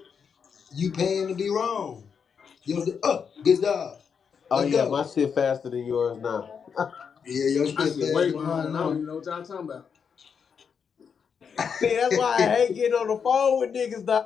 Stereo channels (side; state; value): right; quieter; 6.6 dB